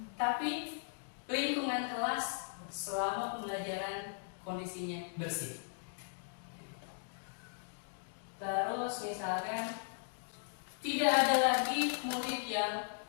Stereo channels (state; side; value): silent; right; digital silence